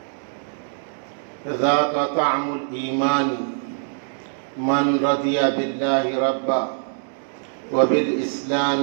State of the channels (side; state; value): left; silent; digital silence